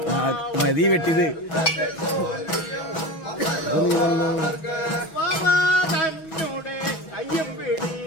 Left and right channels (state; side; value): late; right; 6.2 ms